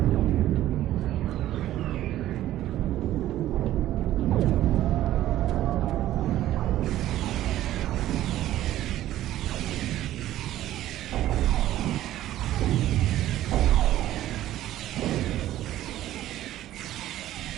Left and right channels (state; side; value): quieter; left; 13.7 dB